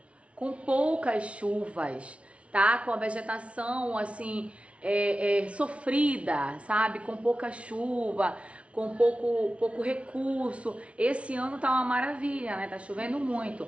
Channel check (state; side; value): late; left; 0.062 ms